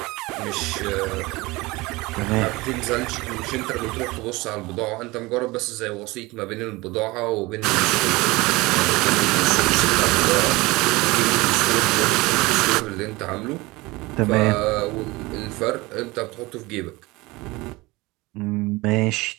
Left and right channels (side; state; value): left; quieter; 22.1 dB